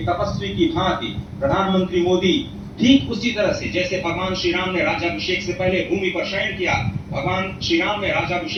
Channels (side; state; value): both; identical; correlation 1.00